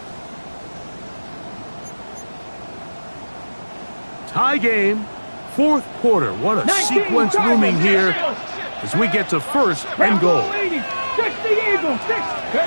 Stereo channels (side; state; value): both; inverted; correlation -1.00